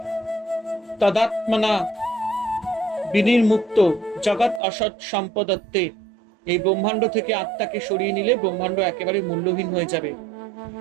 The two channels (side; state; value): left; drops out; at 4.6 s